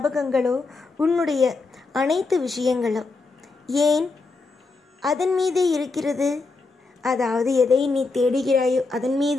உன்னுடைய அனைத்து விஷயங்களோ ஏன் அதன் மீதே இருக்கிறது? அதாவது எதை நீ தேடுகிறாயோ அதன்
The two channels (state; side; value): quieter; right; 3.8 dB